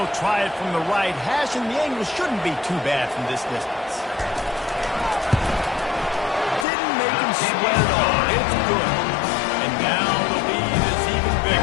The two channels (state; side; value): drops out; right; at 6.7 s